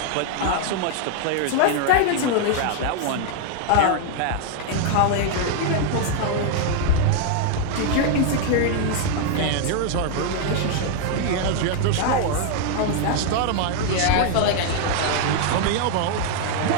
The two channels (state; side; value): different; both; correlation 0.00